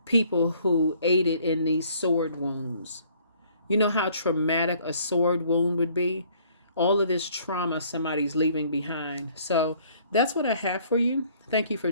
people who aided in these sword wounds. You know how traumatic a sword wound would be? All of this trauma somebody's leaving behind. So that's what I have for you. Thank you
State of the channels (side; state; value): both; inverted; correlation -0.60